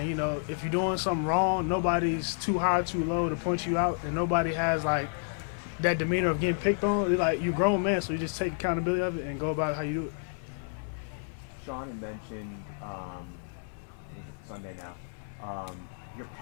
You know, if you're doing something wrong, nobody's too high, too low to point you out, and nobody has like that demeanor of getting picked on. They're like, you're a grown man, so you just take accountability of it and go about how you do it. Sean had mentioned Sunday now, your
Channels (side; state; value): right; silent; digital silence